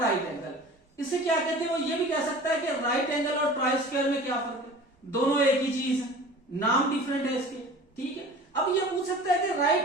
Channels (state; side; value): normal; both; correlation 0.41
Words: एंगल। इसे क्या कहते हैं, वो ये भी कह सकता है कि राइट एंगल और ट्राई स्क्वायर में क्या फर्क है, दोनों एक ही चीज है, नाम डिफरेंट है इसके, ठीक है। अब ये पूछ सकता है कि